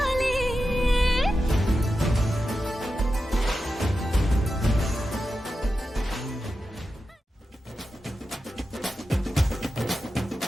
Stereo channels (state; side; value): normal; both; correlation 0.91